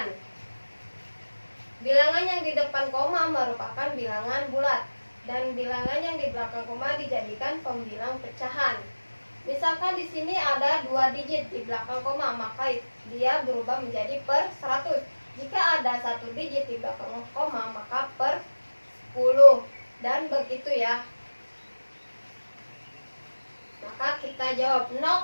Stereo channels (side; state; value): both; inverted; correlation -1.00